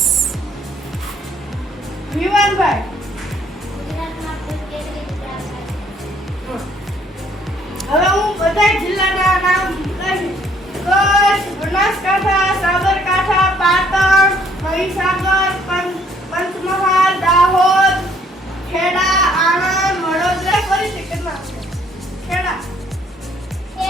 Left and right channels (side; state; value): both; normal; correlation 0.63